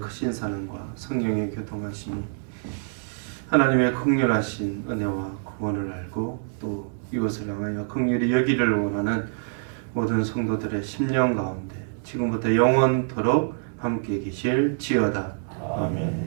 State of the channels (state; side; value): silent; left; 61 dB below the other